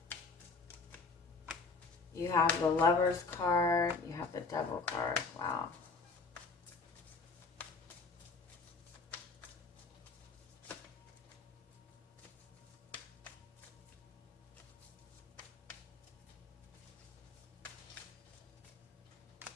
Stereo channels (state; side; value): quieter; right; 4.2 dB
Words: You have the Lover's card, you have the Devil card. Wow.